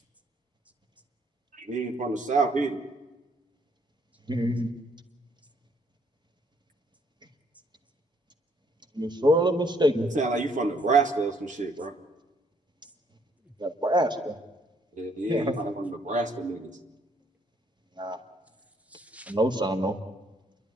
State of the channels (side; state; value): both; normal; correlation 0.68